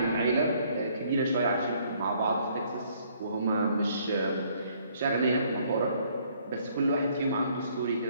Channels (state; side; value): inverted; both; correlation -0.64